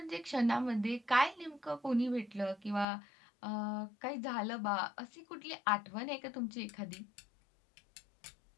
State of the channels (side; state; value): right; drops out; at 2.9 s